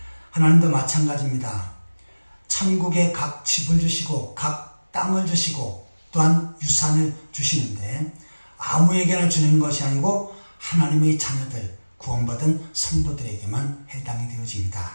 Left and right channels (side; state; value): both; inverted; correlation -1.00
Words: 하나님도 마찬가지입니다. 천국에 각 집을 주시고 각 땅을 주시고 또한 유산을 주시는데 아무에게나 주는 것이 아니고 하나님의 자녀들, 구원받은 성도들에게만 해당이